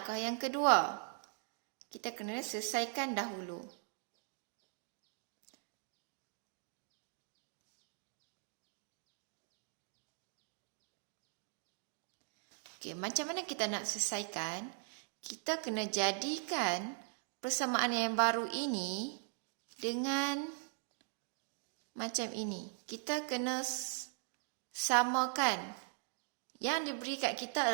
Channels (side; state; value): left; silent; 51 dB below the other